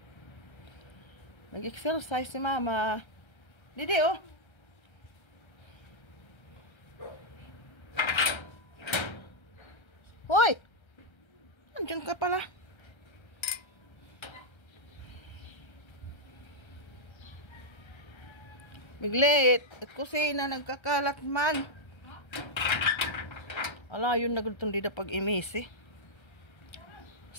Nag-exercise si mama. Didi, oh. Hoy! Andiyan ka pala. Biglit. At kusina, nagkakalat man. Ala, yun nagultong dida pag imisi.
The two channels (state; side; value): late; right; 1.3 ms